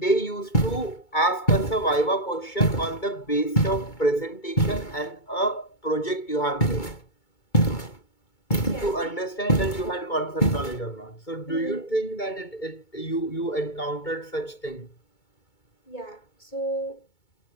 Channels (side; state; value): right; late; 2.2 ms